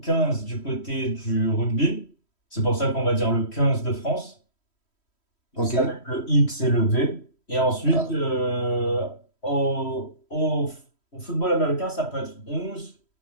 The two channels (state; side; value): late; right; 3.1 ms